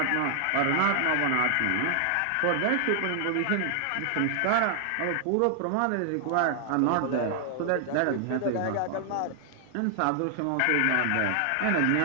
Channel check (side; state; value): both; different; correlation 0.00